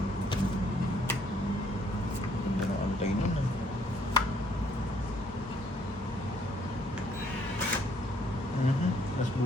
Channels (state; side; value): normal; both; correlation 0.65